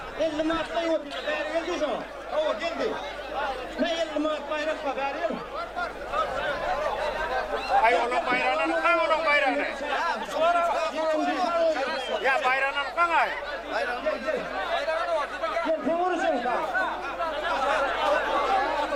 50 Mart'ta yok. Beri geldi şu. O geldi. Ne 50 Mart bayrak var beri geldi. Ay oğlum bayrağını kan oğlum bayrağını. Ya bayrağını kan ay. Gel sen vurursun kan.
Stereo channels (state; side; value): identical; both; correlation 1.00